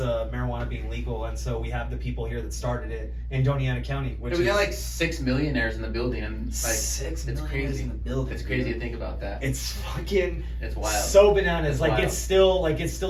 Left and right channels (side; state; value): both; identical; correlation 1.00